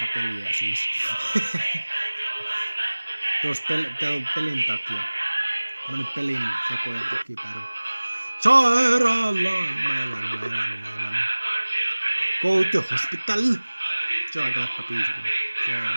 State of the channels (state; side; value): inverted; both; correlation -1.00